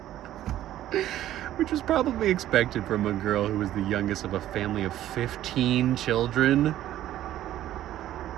Which was probably expected from a girl who was the youngest of a family of 15 children.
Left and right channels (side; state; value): left; quieter; 13.0 dB